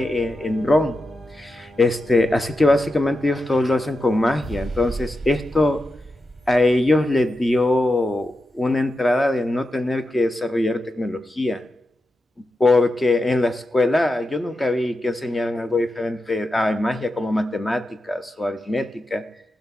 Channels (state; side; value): normal; both; correlation 0.89